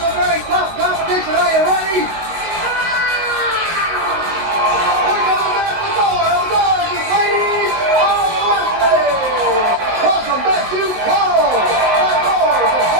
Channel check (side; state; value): left; late; 19 ms